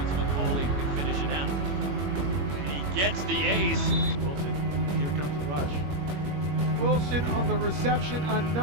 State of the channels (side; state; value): left; late; 21 ms